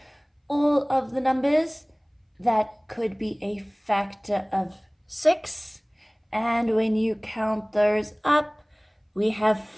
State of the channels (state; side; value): identical; both; correlation 1.00